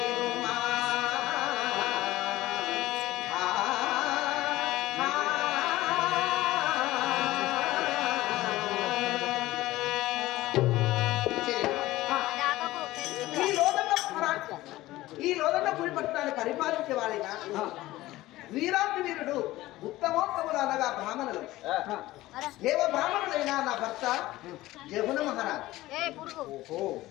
ఈ లోదన్న పులి పట్టణాన్ని పరిపాలించే వాడిగా వీరాతి వీరుడు ఉత్తమోత్తములు అనగా బ్రాహ్మణులు. దేవ బ్రాహ్మణుడైన నా భర్త జమున మహారాజ్.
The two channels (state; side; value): quieter; right; 17.1 dB